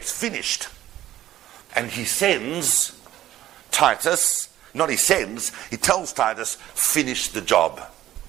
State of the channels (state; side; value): quieter; left; 13.5 dB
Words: finished. And he sends Titus, he tells Titus, finish the job.